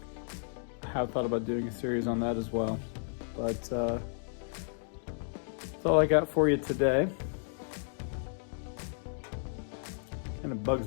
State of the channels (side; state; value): right; silent; digital silence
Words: I have thought about doing a series on that as well. But that's all I got for you today. Kind of bugs